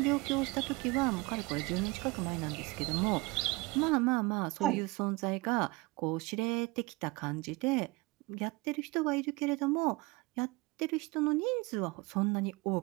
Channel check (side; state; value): left; quieter; 23.5 dB